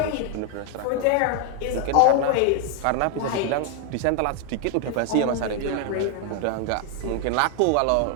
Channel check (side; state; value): both; different; correlation 0.00